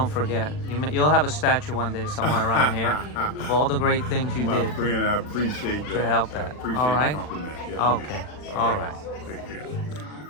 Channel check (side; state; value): right; late; 40 ms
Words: forget. You'll have a statue one day somewhere around here of all the great things you did. My friend, I appreciate that. To help that. Appreciate all right. the compliment. Yes, okay. All right. Take